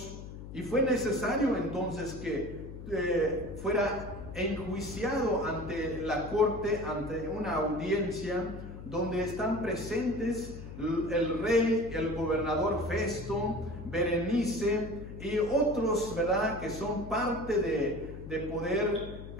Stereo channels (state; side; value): noise; left; hum, 11 dB below the sound